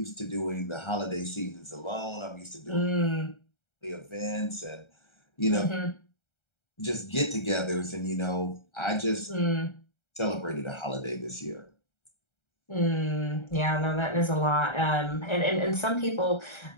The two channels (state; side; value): late; right; 1.3 ms